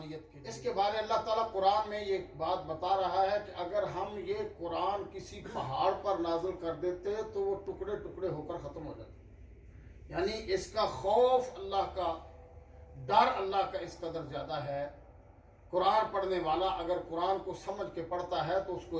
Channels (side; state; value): both; identical; correlation 1.00